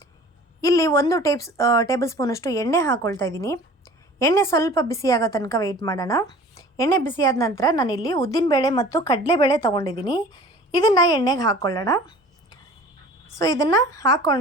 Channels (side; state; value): both; normal; correlation 0.44